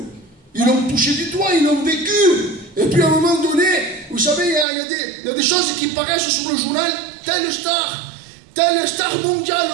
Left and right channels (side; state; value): left; drops out; at 4.7 s